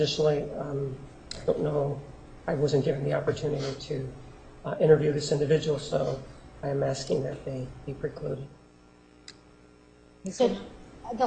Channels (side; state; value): both; identical; correlation 1.00